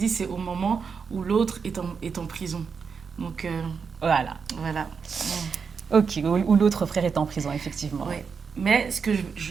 c'est au moment où l'autre est en prison. Donc, Voilà. voilà. Ok, ou l'autre frère est en prison, effectivement. Ouais. Mais ce que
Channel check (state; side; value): quieter; left; 5.8 dB